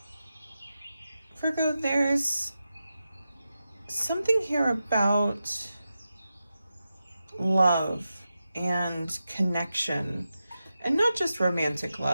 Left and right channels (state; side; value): inverted; both; correlation -0.90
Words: Virgo, there's something here about love and connection, and not just romantic